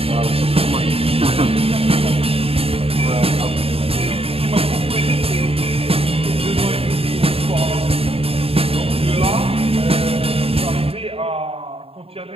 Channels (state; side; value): late; left; 0.28 ms